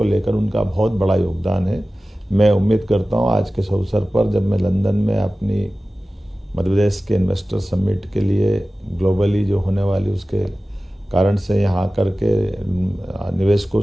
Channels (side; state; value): both; normal; correlation 0.96